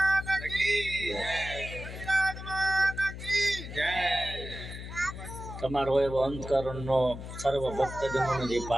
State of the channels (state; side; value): noise; left; hum, 10 dB below the sound